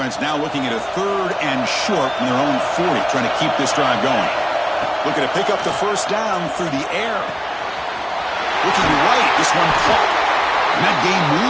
now looking at a 3rd and short from their own 40, trying to keep this drive going. Looking to pick up the first down through the air. Looking right, this one caught. And that game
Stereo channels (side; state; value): both; identical; correlation 1.00